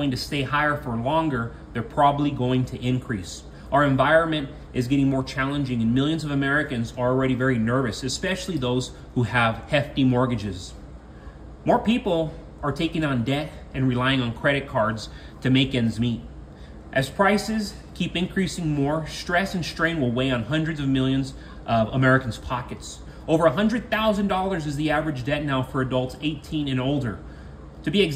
to stay higher for longer, they're probably going to increase. Our environment is getting more challenging, and millions of Americans are already very nervous, especially those who have hefty mortgages. More people are taking on debt and relying on credit cards to make ends meet. As prices keep increasing more, stress and strain will weigh on hundreds of millions of Americans' pockets. Over $100,000 is the average debt now for adults 18 and older. To be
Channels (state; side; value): identical; both; correlation 1.00